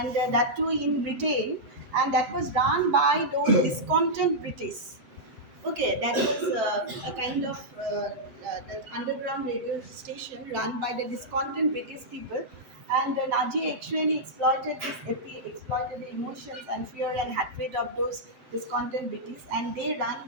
that too in Britain, and that was run by those discontent British. Okay, that was a kind of the underground radio station run by the discontent British people, and the Nazi actually exploited the emotions and fear and hatred of those discontent British, and they ran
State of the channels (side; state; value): left; late; 7.8 ms